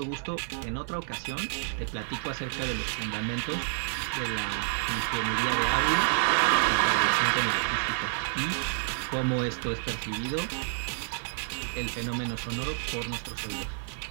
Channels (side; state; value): left; silent; 58 dB below the other